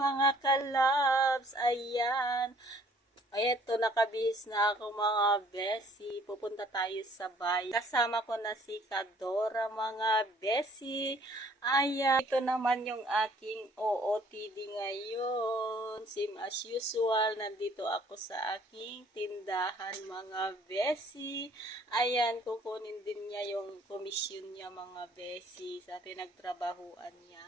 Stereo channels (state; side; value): normal; both; correlation 0.58